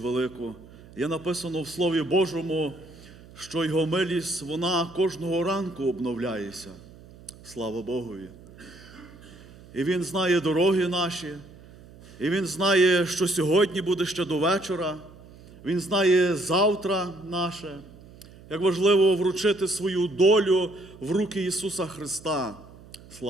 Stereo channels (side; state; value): right; noise; hum, 21 dB below the sound